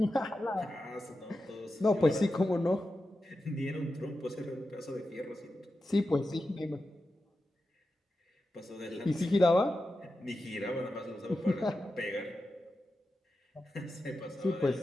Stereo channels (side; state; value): both; normal; correlation 0.91